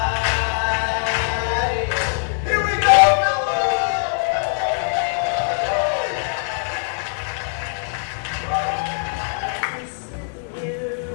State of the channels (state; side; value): silent; right; digital silence